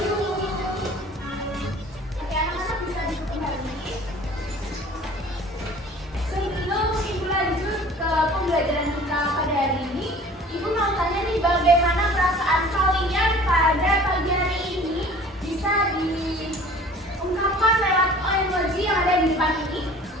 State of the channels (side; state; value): both; normal; correlation 0.47